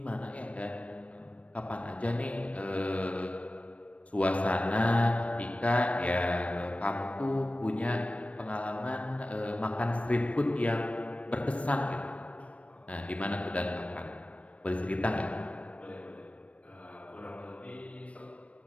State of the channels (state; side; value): late; right; 0.064 ms